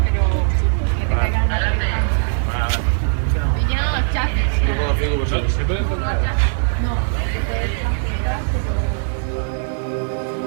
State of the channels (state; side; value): silent; left; digital silence